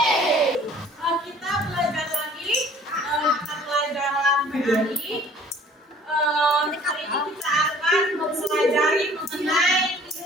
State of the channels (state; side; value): normal; both; correlation 0.52